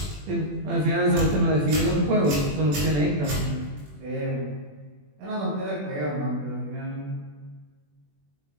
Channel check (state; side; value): late; left; 21 ms